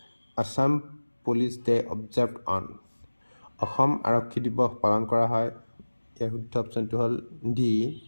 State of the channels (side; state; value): both; inverted; correlation -1.00